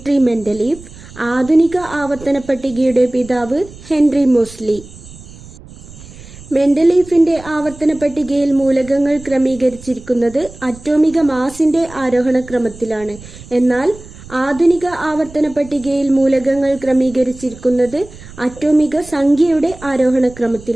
മെൻഡലീവ്, ആധുനിക ആവർത്തന പട്ടികയുടെ പിതാവ് ഹെൻറി മോസ്ലി. മെൻഡലീഫിന്റെ ആവർത്തന പട്ടികയിൽ മൂലകങ്ങൾ ക്രമീകരിച്ചിരിക്കുന്നത് അറ്റോമിക മാസിന്റെ ആരോഹണ ക്രമത്തിലാണ്. എന്നാൽ ആധുനിക ആവർത്തന പട്ടികയിൽ മൂലകങ്ങൾ ക്രമീകരിച്ചിരിക്കുന്നത് അറ്റോമിക സംഖ്യയുടെ ആരോഹണ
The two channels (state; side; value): noise; right; rumble, 18 dB below the sound